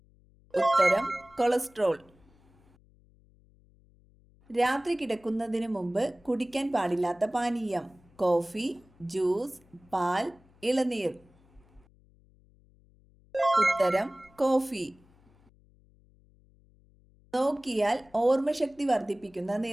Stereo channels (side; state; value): left; noise; hum, 30 dB below the sound